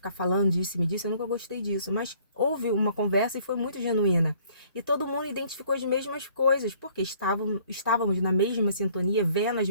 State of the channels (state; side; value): inverted; both; correlation -0.59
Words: falando disso e me disso. Eu nunca gostei disso. Mas houve uma conversa e foi muito genuína. E todo mundo identificou as mesmas coisas, porque estávamos na mesma sintonia, vendo as